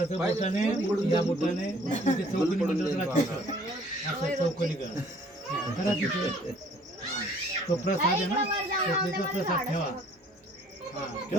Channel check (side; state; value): both; normal; correlation 0.57